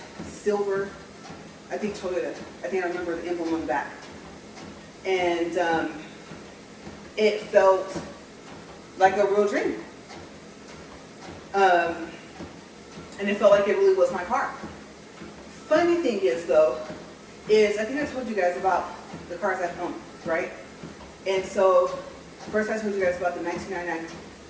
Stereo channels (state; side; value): identical; both; correlation 1.00